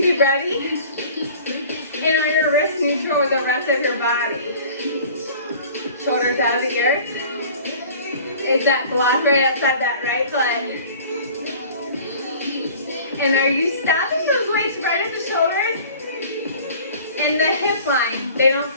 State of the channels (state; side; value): inverted; both; correlation -0.45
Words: be ready? And are your wrists neutral with the rest of your body? Shoulders out of the ears. Is that block right outside that right foot? And are you stopping those weights right at the shoulders? And the hip line, they don't